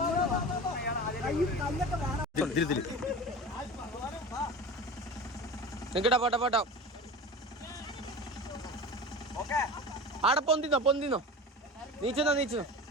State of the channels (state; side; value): normal; both; correlation 0.33